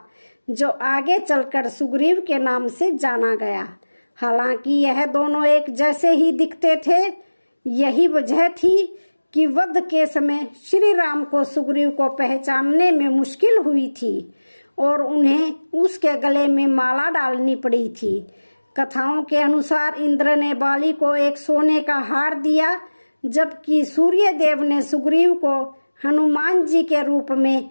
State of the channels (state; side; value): inverted; both; correlation -1.00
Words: जो आगे चलकर सुग्रीव के नाम से जाना गया। हालांकि यह दोनों एक जैसे ही दिखते थे। यही वजह थी कि वध के समय श्री राम को सुग्रीव को पहचानने में मुश्किल हुई थी और उन्हें उसके गले में माला डालनी पड़ी थी। कथाओं के अनुसार इंद्र ने बाली को एक सोने का हार दिया, जबकि सूर्यदेव ने सुग्रीव को हनुमान जी के रूप में